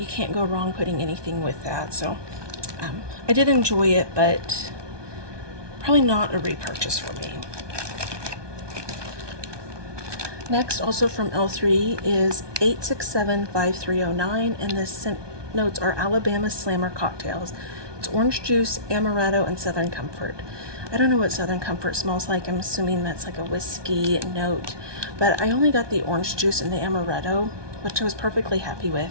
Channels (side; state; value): left; late; 1.2 ms